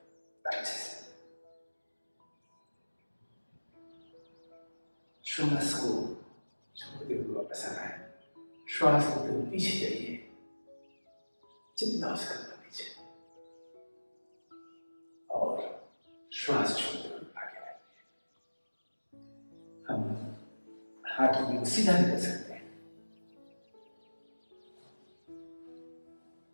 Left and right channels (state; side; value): inverted; both; correlation -1.00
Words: अच्छे से। श्वास को छोड़ते हुए वापस आना है। श्वास लेते हुए पीछे जाइए जितना हो सकता पीछे, और श्वास छोड़ते हुए आगे आइए। हम हाथ को सीधा नहीं कर सकते हैं।